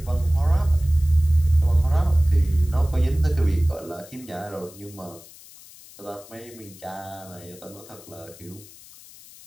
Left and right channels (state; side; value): noise; left; hiss, 21 dB below the sound